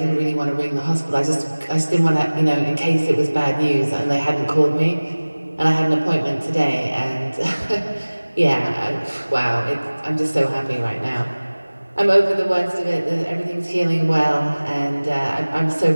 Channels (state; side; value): inverted; both; correlation -1.00